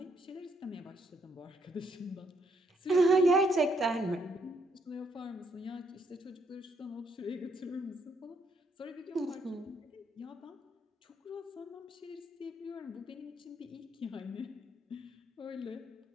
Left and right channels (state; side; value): normal; both; correlation 0.73